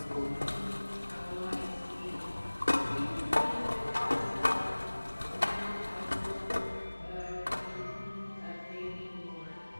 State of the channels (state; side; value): inverted; both; correlation -1.00